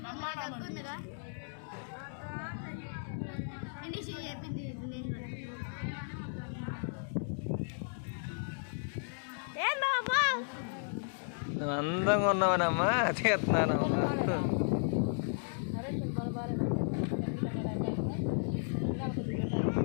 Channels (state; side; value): silent; right; digital silence